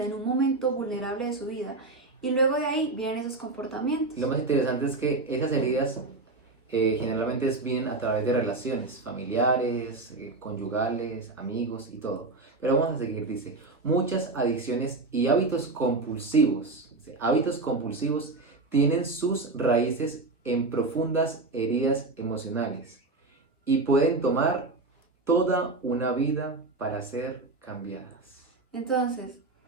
en un momento vulnerable de su vida, y luego de ahí vienen esos comportamientos. Lo más interesante es que esas heridas generalmente vienen a través de relaciones familiares, conyugales, amigos y todo. Pero vamos a seguir, dice, muchas adicciones y hábitos compulsivos tienen sus raíces en profundas heridas emocionales y pueden tomar toda una vida para ser cambiadas. Entonces,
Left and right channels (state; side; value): quieter; left; 3.3 dB